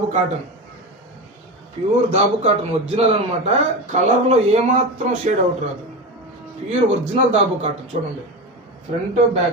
దాబు కాటన్ ఒరిజినల్ అనమాట. కలర్లో ఏమాత్రం షేడ్ అవుట్ రాదు, ప్యూర్ ఒరిజినల్ దాబు కాటన్. చూడండి ఫ్రంట్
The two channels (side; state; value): both; normal; correlation 0.22